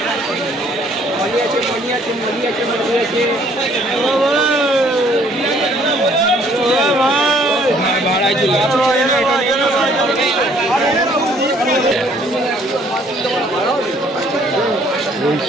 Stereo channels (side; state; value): both; normal; correlation 0.61